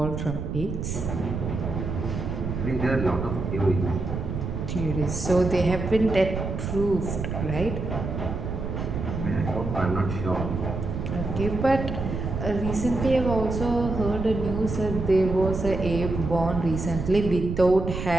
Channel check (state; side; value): noise; right; rumble, 4 dB below the sound